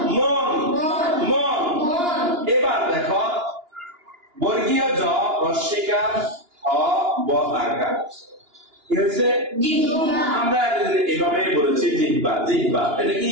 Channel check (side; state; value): left; late; 2.9 ms